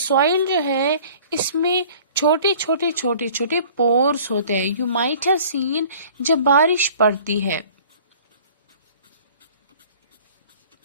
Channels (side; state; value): both; inverted; correlation -0.49